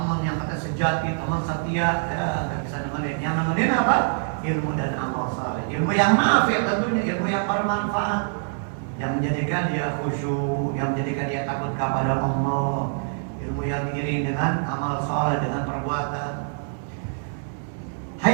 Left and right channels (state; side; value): silent; left; digital silence